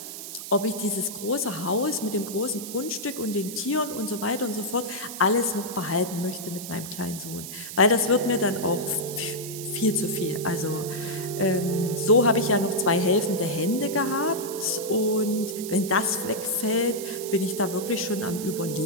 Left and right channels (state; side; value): noise; right; hiss, 10 dB below the sound